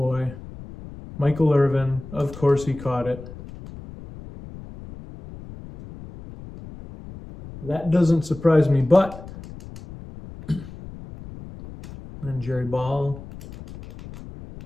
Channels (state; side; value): noise; left; rumble, 15 dB below the sound